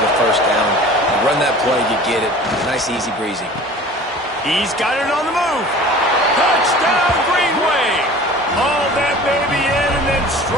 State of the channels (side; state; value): both; normal; correlation 0.43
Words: the 1st down. You run that play, you get it. Nice, easy breezy. He's got it on the move. Touchdown, Greenway. Hauled that baby in and then